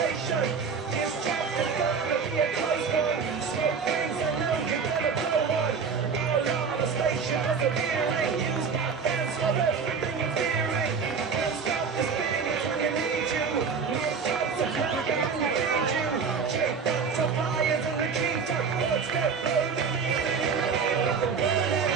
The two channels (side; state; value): left; quieter; 5.7 dB